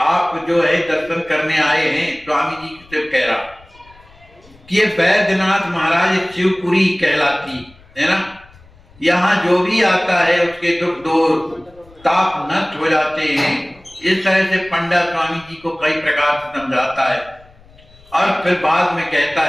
आप जो है दर्शन करने आए हैं। स्वामी जी से कह रहा कि ये वैद्यनाथ महाराज शिवपुरी कहलाती है ना, यहाँ जो भी आता है उसके दुख दूर ताप नष्ट हो जाते हैं। इस तरह से पंडा स्वामी जी को कई प्रकार से समझाता है और फिर बाद में कहता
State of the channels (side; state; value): left; noise; rumble, 27 dB below the sound